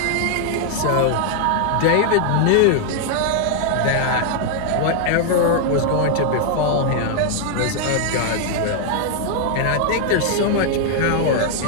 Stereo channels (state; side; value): different; both; correlation 0.00